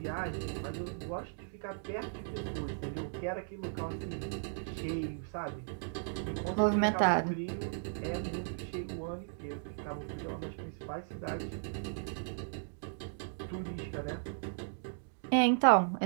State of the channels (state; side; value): silent; left; digital silence